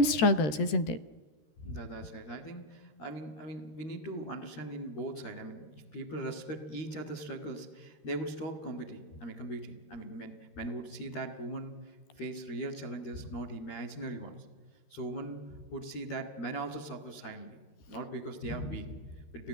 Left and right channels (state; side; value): late; right; 13 ms